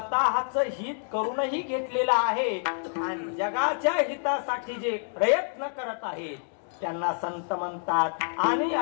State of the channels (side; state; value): right; silent; digital silence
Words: हित करूनही घेतलेलं आहे आणि जगाच्या हितासाठी जे प्रयत्न करत आहेत त्यांना संत म्हणतात. आणि